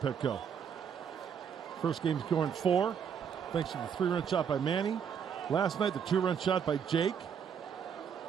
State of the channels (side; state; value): left; quieter; 7.5 dB